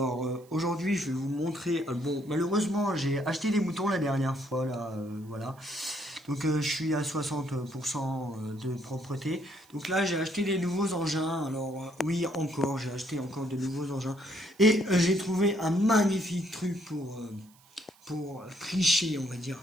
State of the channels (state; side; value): noise; right; hiss, 28 dB below the sound